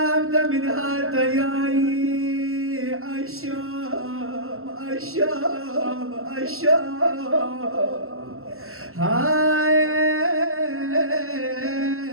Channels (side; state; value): left; late; 0.62 ms